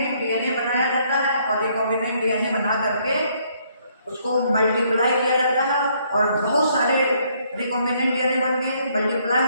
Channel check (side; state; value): both; inverted; correlation -0.68